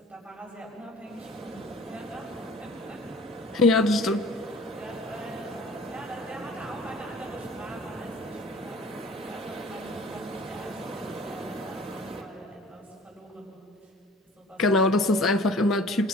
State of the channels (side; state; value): both; normal; correlation 0.48